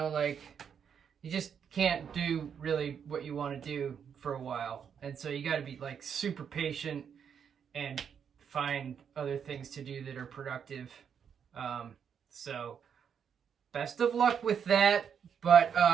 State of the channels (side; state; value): left; quieter; 7.5 dB